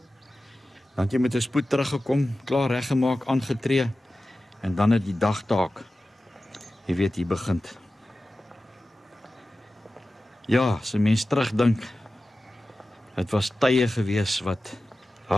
Dan het jy met 'n spoed teruggekom, klaar reggemaak, aangetree en dan het die dagtaak, jy weet, hier begin. Ja, as 'n mens terugdink, het was tye gewees wat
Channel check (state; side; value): normal; both; correlation 0.95